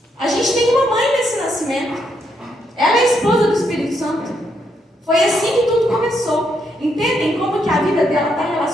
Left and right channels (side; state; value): both; normal; correlation 0.77